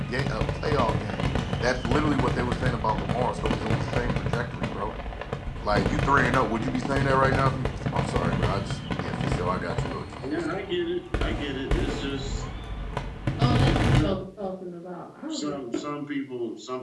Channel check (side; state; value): both; identical; correlation 1.00